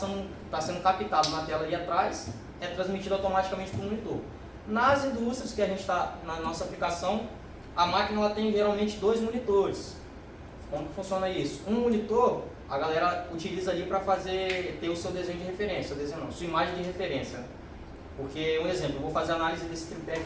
captado na tela ali atrás é transmitido automaticamente para o monitor. Nas indústrias que a gente está, na nossa aplicação, a máquina ela tem geralmente 2 monitores. Como que funciona isso? Um monitor, a galera utiliza ali para ter o seu desenho de referência, sua imagem de referência. Porque, um exemplo, eu vou fazer análise desse tripé que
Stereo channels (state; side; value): identical; both; correlation 1.00